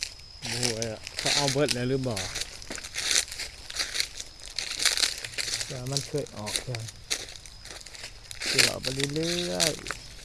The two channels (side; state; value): both; identical; correlation 1.00